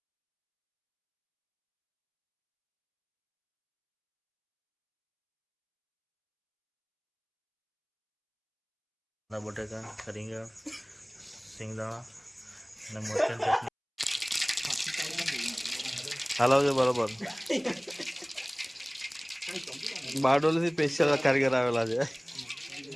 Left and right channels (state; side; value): identical; both; correlation 1.00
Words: બટેકા, રીંગણ, સિંગદાણા અને મરચાં ચટણી હલાવજો બરોબર. બારડોલીથી સ્પેશિયલ કારીગર આવેલા છે.